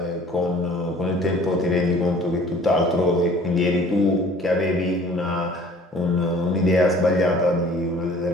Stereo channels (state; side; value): normal; both; correlation 0.51